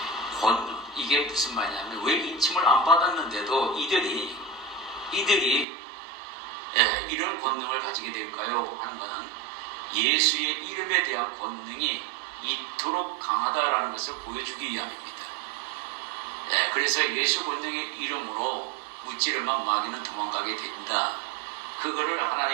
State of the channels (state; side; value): drops out; left; at 5.7 s